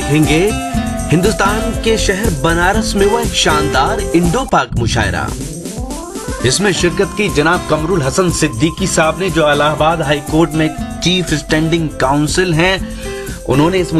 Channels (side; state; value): both; identical; correlation 1.00